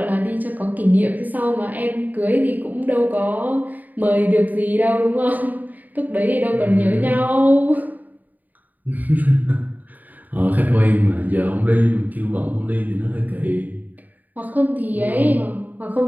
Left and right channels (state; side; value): late; left; 0.082 ms